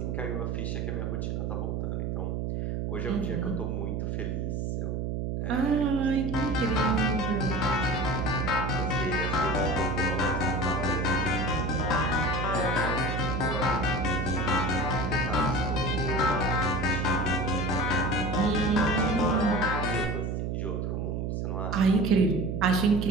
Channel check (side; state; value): right; noise; hum, 1 dB below the sound